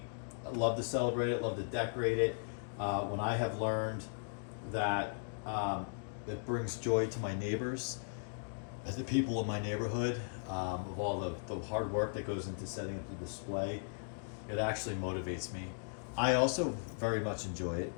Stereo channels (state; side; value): silent; right; digital silence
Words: I love to celebrate it, love to decorate it. When I have learned that it brings joy to my neighbors, the people in my neighborhood, of all the hard work that goes into setting up the display, it actually motivates me. I also very much enjoy it.